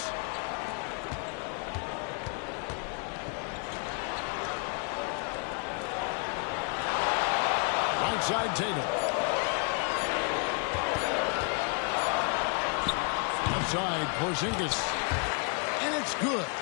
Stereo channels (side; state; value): right; quieter; 36.8 dB